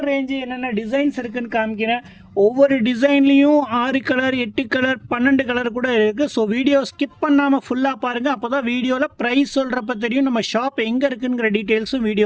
ரேஞ்சு, என்னென்ன டிசைன்ஸ் இருக்குதுன்னு காமிக்கிறேன். ஒவ்வொரு டிசைன்லேயும் 6 கலர், 8 கலர், 12 கலர் கூட இருக்குது. ஸோ வீடியோ ஸ்கிப் பண்ணாமல் ஃபுல்லாக பாருங்கள். அப்போ தான் வீடியோவில் ப்ரைஸ் சொல்கிறப்ப தெரியும் நம்ம ஷாப் எங்கே இருக்குங்கிற டீட்டெயில்ஸும்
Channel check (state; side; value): identical; both; correlation 1.00